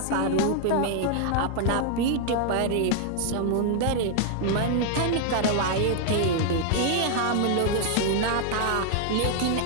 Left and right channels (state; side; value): different; both; correlation 0.00